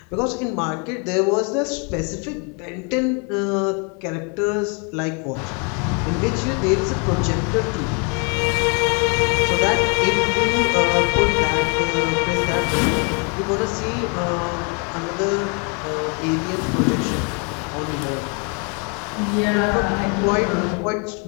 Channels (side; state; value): right; quieter; 35.6 dB